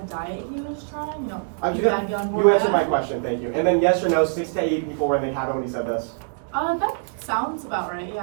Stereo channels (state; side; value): silent; left; digital silence